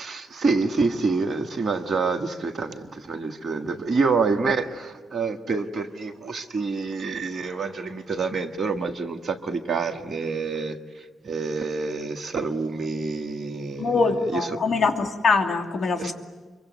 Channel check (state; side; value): normal; both; correlation 0.75